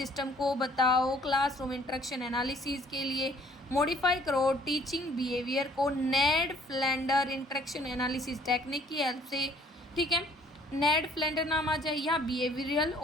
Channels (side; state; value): both; normal; correlation 0.59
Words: को बताओ क्लासरूम इंटरेक्शन एनालिसिस के लिए, मॉडिफाई करो टीचिंग बिहेवियर को नेड फ्लेंडर इंटरेक्शन एनालिसिस टेक्निक की हेल्प से। ठीक है, नेड फ्लेंडर नाम आ जाए या बिहेवियरल